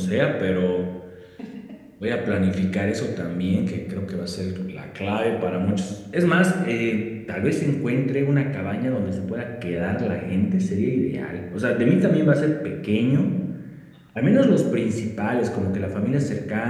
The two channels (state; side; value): identical; both; correlation 1.00